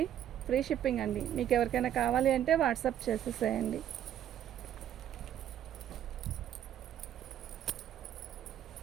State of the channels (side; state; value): left; quieter; 10.7 dB